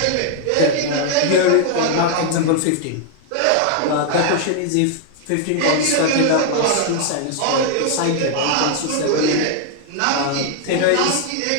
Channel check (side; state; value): both; different; correlation 0.00